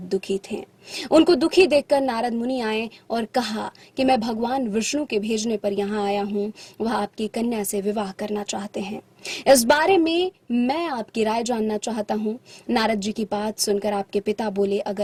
दुखी थे। उनको दुखी देखकर नारद मुनि आए और कहा कि मैं भगवान विष्णु के भेजने पर यहाँ आया हूँ। वह आपकी कन्या से विवाह करना चाहते हैं। इस बारे में मैं आपकी राय जानना चाहता हूँ। नारद जी की बात सुनकर आपके पिता बोले,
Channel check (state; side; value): identical; both; correlation 1.00